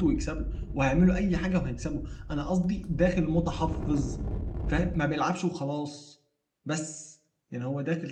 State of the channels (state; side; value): identical; both; correlation 1.00